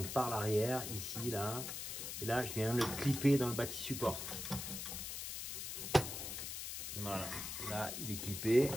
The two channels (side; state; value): left; noise; hiss, 5 dB below the sound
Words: par l'arrière, ici, là. Et là, je viens le clipper dans le bâti support. Voilà. Là, il est clippé,